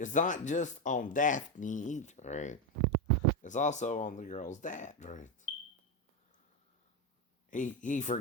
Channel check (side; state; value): both; normal; correlation 0.10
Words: not just on Daphne either, right? It's also on the girl's dad, right? He